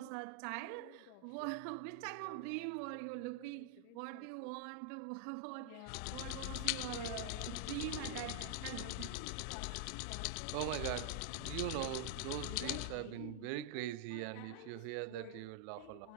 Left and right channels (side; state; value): both; different; correlation -0.01